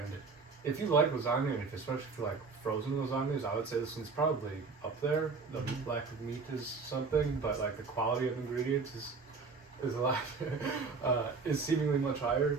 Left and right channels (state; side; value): quieter; left; 4.6 dB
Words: if you like lasagna, and especially if you like frozen lasagnas, I would say this one's probably up there. The lack of meat is something, but like the quality of ingredients is a lot is seemingly much higher